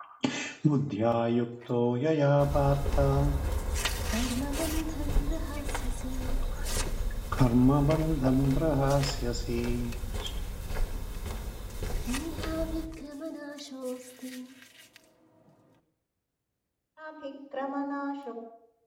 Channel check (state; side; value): identical; both; correlation 1.00